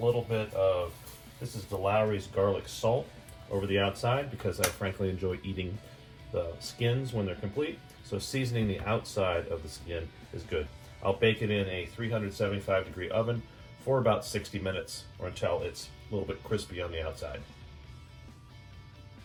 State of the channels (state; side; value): identical; both; correlation 1.00